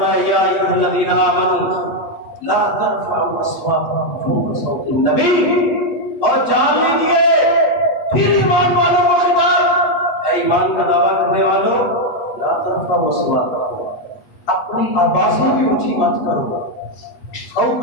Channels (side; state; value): right; late; 8.1 ms